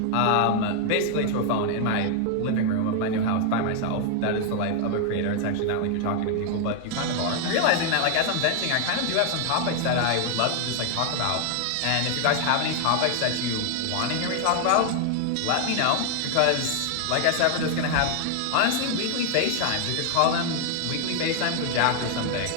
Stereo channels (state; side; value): different; both; correlation 0.00